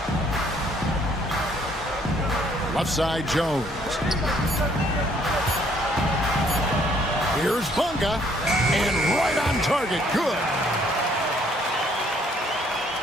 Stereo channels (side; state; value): both; normal; correlation 0.64